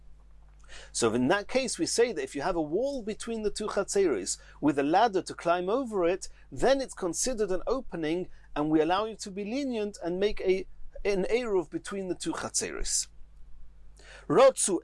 So in that case, we say that if you have a wall between the two chatzeris with a ladder to climb over it, then it's considered an opening, and we allow you to be lenient and make an eruv between the two chatzeris. Rotzu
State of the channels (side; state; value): both; identical; correlation 1.00